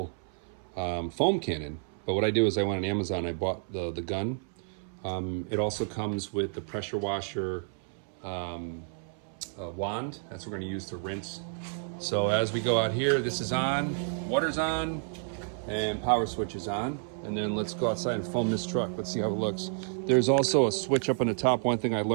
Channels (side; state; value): left; silent; 58 dB below the other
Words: foam cannon. But what I do is I went on Amazon, I bought the gun. It also comes with the pressure washer wand. That's what we're gonna use to rinse. So as we go out here, this is on, water's on, and power switch is on. And then let's go outside and foam this truck. Let's see how it looks. There's also a switch up on the top. One thing I